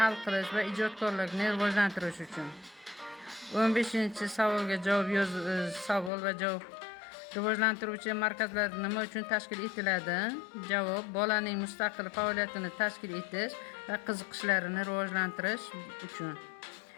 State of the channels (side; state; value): right; drops out; at 6.1 s